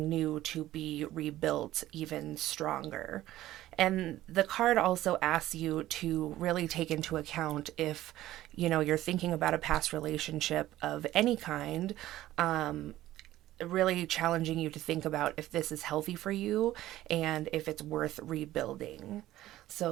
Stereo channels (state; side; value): quieter; left; 14.8 dB